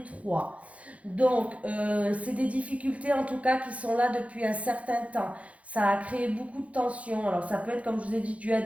trois. Donc, c'est des difficultés en tout cas qui sont là depuis un certain temps. Ça a créé beaucoup de tensions. Alors, ça peut être, comme je vous ai dit, dû à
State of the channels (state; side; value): late; left; 0.065 ms